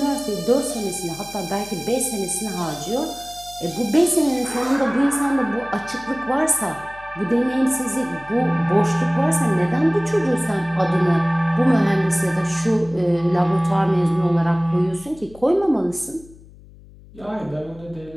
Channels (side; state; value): left; noise; hum, 22 dB below the sound